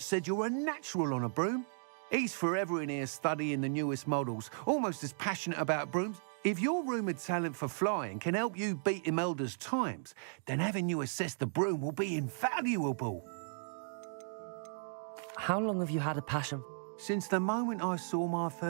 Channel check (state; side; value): silent; left; digital silence